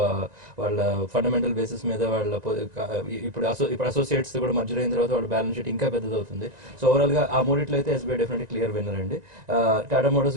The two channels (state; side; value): late; left; 1.9 ms